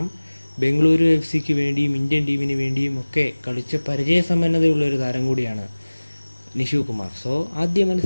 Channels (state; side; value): inverted; both; correlation -1.00